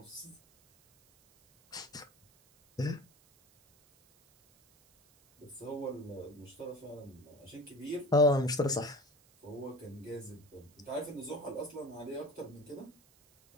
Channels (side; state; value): right; noise; hiss, 29 dB below the sound